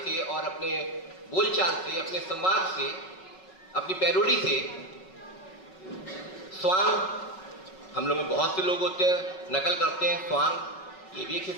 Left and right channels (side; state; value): right; late; 5.4 ms